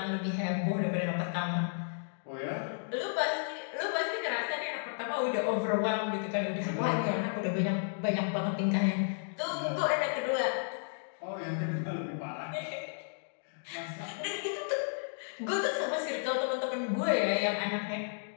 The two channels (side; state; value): right; silent; digital silence